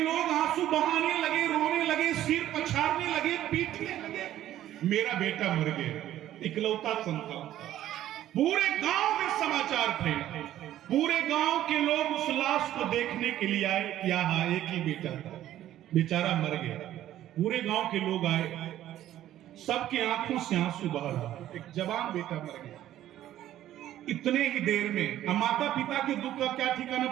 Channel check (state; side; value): quieter; left; 12.8 dB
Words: आंसू बहाने लगे, रोने लगे, सिर पछाड़ने लगे, पीटने लगे। मेरा बेटा मर गया, इकलौता संतान था। पूरे गांव में समाचार फैला, पूरे गांव के लोग उस लाश को देखने के लिए आए। क्या हाँ, एक ही बेटा था, बेचारा मर गया। पूरे गांव के लोग आए, सबके आंखों से आंसू बह रहा। एक जवान बेटा मर गया इतने ही देर में। माता पिता के दुख का क्या